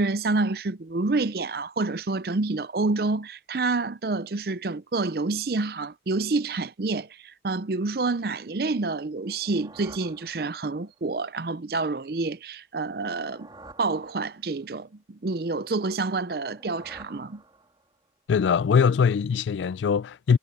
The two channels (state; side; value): normal; both; correlation 0.32